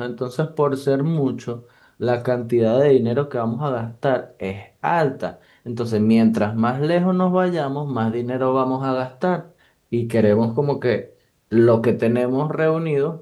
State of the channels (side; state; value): both; identical; correlation 1.00